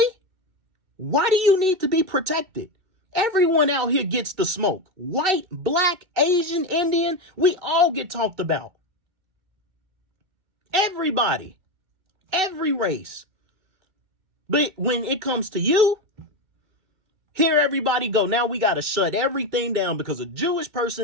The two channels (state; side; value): late; left; 2.6 ms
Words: why do you need to be protected? Everyone out here gets the smoke. White, black, Asian, Indian, we all get talked about. Everybody, every race. But when it comes to you, here everybody go. Now we got to shut everything down because a Jewish